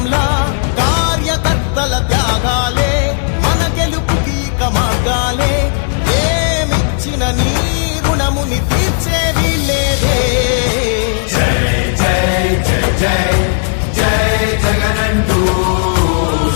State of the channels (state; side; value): silent; right; digital silence